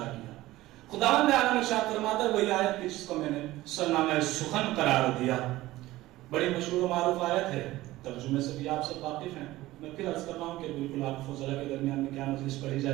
کیا. خداوند عالم ارشاد فرماتا ہے, وہی آیت جس کو میں نے سرنامہ سخن قرار دیا, بڑی مشہور و معروف آیت ہے, ترجمے سے بھی آپ سب واقف ہیں. میں پھر عرض کر رہا ہوں کہ بالکل آپ فضلہ کے درمیان میں کیا مجلس پڑھی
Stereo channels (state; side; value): quieter; left; 17.1 dB